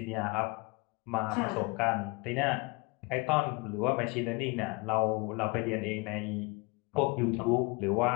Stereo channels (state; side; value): quieter; right; 27.3 dB